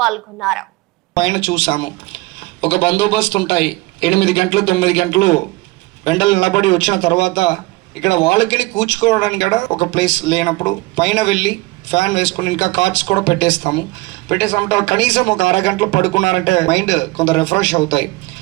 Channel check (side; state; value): left; quieter; 22.1 dB